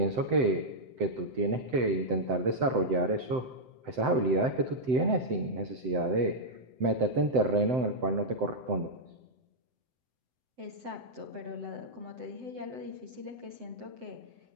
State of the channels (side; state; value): left; late; 7.8 ms